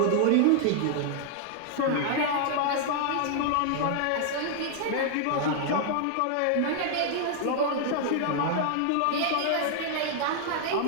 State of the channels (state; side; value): different; both; correlation 0.00